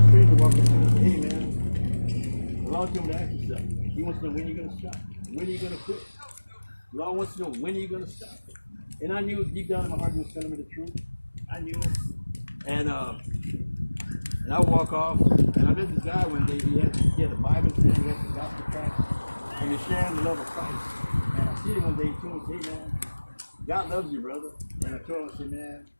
the street and walk up to me and say, hey man, the Lord told me to ask you something. He wants to know when you're going to stop. When are you going to quit? The Lord wants to know when are you going to stop. And I knew deep down in my heart he was telling me the truth. I knew it. And I would walk off, and I met this guy one day. He had a Bible thing, he had the gospel tract, and he's sharing the love of Christ. And I see him one day, he told me, hey man, God loves you, brother. And I told him, I said, man,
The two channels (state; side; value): inverted; both; correlation -1.00